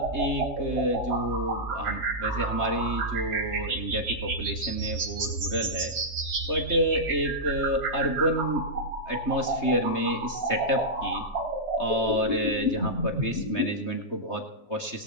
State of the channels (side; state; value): right; late; 3.3 ms